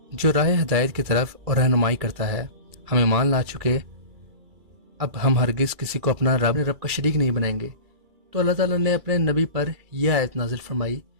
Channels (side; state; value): left; late; 2.3 ms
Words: جو راہ ہدایت کی طرف اور رہنمائی کرتا ہے، ہم ایمان لا چکے، اب ہم ہرگز کسی کو اپنا رب کا شریک نہیں بنائیں گے۔ تو اللہ تعالیٰ نے اپنے نبی پر یہ آیت نازل فرمائی،